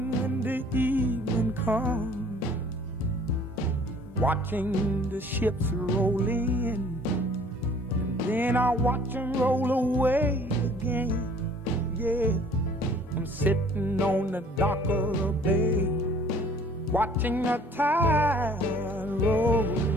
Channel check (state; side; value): normal; both; correlation 0.53